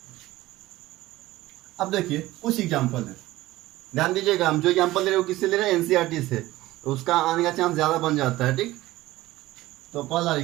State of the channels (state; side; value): quieter; left; 17.2 dB